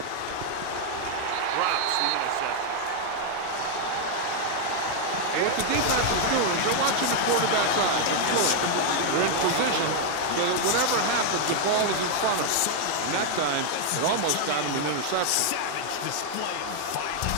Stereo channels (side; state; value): both; different; correlation 0.00